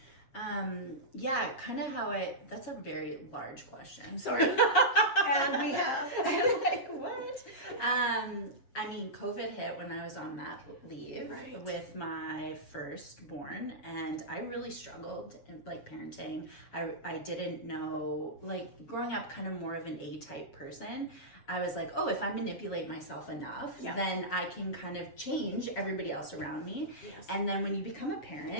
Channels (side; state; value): right; late; 7.2 ms